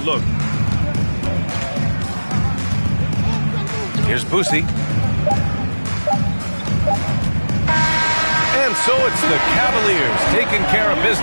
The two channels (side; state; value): both; inverted; correlation -1.00